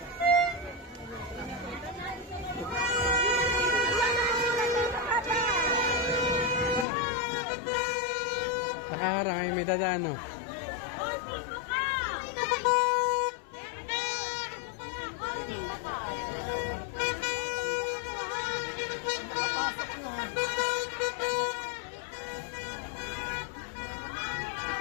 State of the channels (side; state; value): right; drops out; at 6.9 s